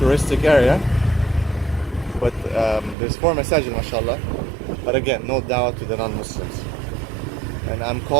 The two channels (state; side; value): drops out; left; at 3.0 s